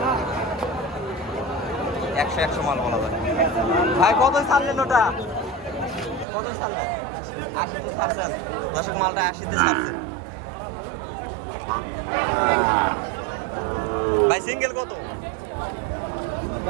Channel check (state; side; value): drops out; left; at 6.2 s